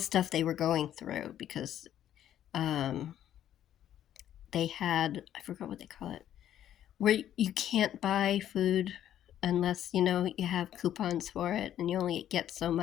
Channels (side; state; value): right; quieter; 11.1 dB